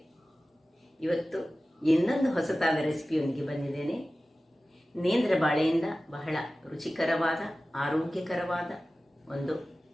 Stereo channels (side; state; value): both; normal; correlation 0.96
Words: ಇವತ್ತು ಇನ್ನೊಂದು ಹೊಸತಾದ ರೆಸಿಪಿಯೊಂದಿಗೆ ಬಂದಿದ್ದೇನೆ. ನೇಂದ್ರ ಬಾಳೆಯಿಂದ ಬಹಳ ರುಚಿಕರವಾದ ಆರೋಗ್ಯಕರವಾದ ಒಂದು